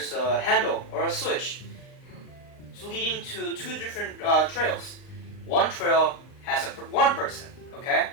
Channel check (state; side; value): late; right; 39 ms